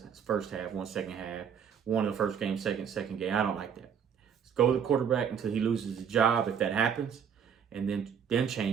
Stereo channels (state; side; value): quieter; left; 7.6 dB